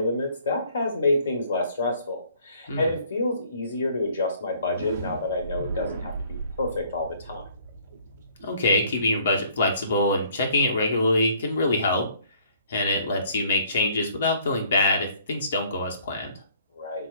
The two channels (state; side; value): inverted; both; correlation -0.59